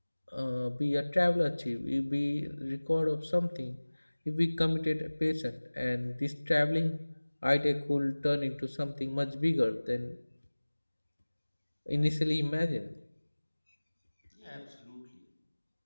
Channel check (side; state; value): both; inverted; correlation -1.00